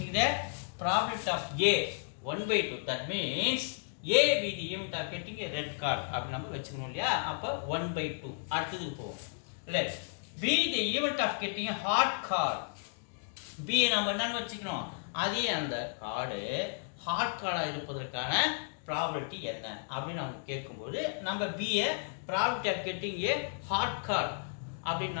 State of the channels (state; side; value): silent; right; digital silence